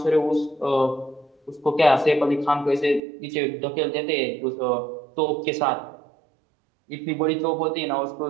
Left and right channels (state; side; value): drops out; left; at 3.0 s